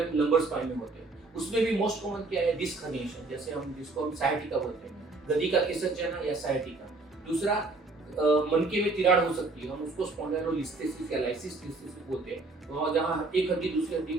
lumbar spine में होते हैं। उसमें भी मोस्ट कॉमन क्या है? डिस्क हर्निएशन, जैसे हम जिसको हम साइटिका बोलते हैं, गदी का खिसक या साइटिका। दूसरा मनके में तिराड़ हो सकती है, हम उसको स्पॉन्डाइलोलिस्थेसिस या लाइसिस बोलते हैं, वहाँ जहाँ एक हड्डी दूसरी हड्डी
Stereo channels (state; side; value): quieter; left; 3.5 dB